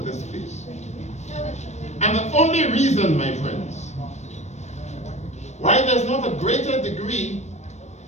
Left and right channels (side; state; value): right; late; 0.33 ms